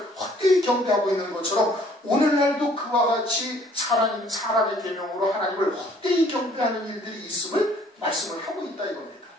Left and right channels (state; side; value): normal; both; correlation 0.59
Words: 헛되이 경배하고 있는 것처럼 오늘날도 그와 같이 사람의 계명으로 하나님을 헛되이 경배하는 일들이 있음을 말씀을 하고 있다 이겁니다.